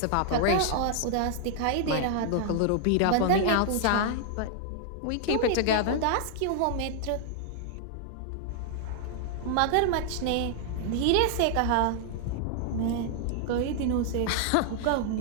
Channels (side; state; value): both; different; correlation -0.01